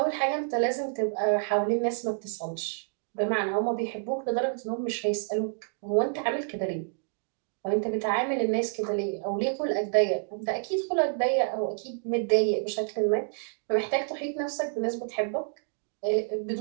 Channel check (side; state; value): left; silent; digital silence